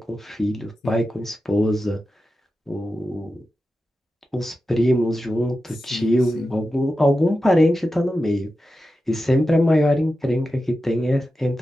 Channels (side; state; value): both; normal; correlation 0.91